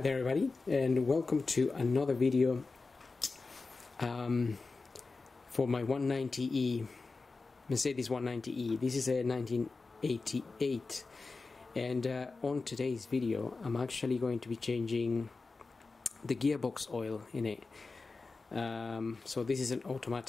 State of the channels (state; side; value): quieter; right; 3.9 dB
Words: everybody, and welcome to another video for my 190e Mercedes 190e. This is a 1988, and on today's video I'm actually going to be changing the gearbox oil in it. So this is an